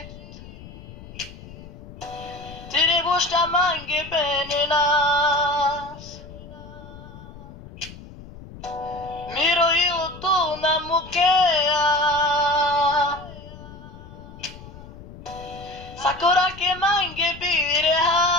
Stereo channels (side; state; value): left; noise; rumble, 16 dB below the sound